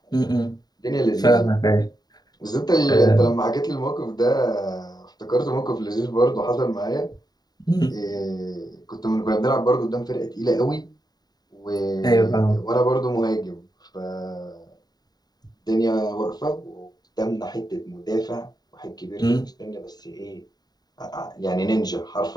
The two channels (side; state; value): right; late; 0.19 ms